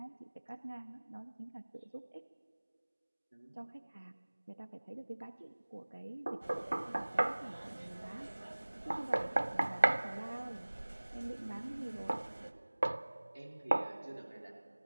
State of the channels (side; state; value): both; inverted; correlation -1.00